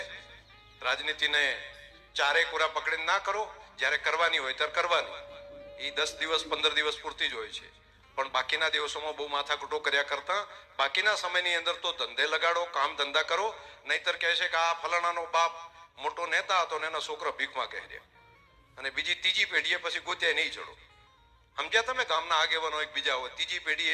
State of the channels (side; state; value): both; identical; correlation 1.00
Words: રાજનીતિને ચારે કોરા પકડીને ના કરો. જ્યારે કરવાની હોય ત્યારે કરવાની. એ 10 દિવસ 15 દિવસ પૂરતી જ હોય છે. પણ બાકીના દિવસોમાં બહુ માથાકૂટો કર્યા કરતા બાકીના સમયની અંદર તો ધંધે લગાડો, કામ ધંધા કરો. નહીતર કહે છે કે આ ફલાણાનો બાપ મોટો નેતા હતો ને એના છોકરા ભીખમાં કહેર્યા, અને બીજી ત્રીજી પેઢીએ પછી ગોત્યા નહીં ચડો. સમજ્યા તમે? ગામના આગેવાનો એક બીજા હોય, ત્રીજી પેઢી